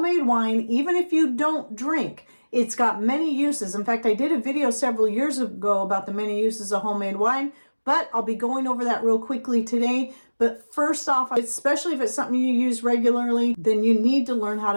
wine even if you don't drink. It's got many uses. In fact, I did a video several years ago about the many uses of homemade wine, but I'll be going over that real quickly today. But first off, especially if it's something you use regularly, then you need to learn how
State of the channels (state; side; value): inverted; both; correlation -1.00